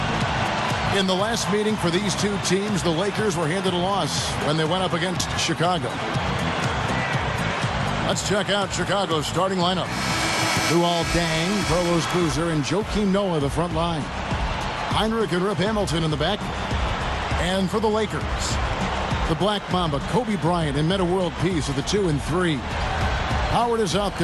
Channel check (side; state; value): both; identical; correlation 1.00